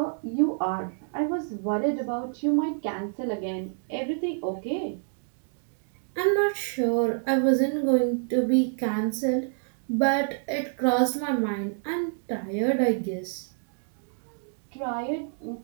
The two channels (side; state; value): left; silent; digital silence